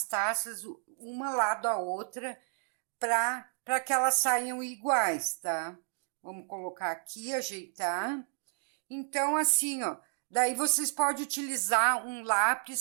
taças uma lado a outra para que elas saiam iguais, tá? Vamos colocar aqui, ajeitar. Então, assim, ó, daí vocês podem utilizar um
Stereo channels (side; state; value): left; silent; 57 dB below the other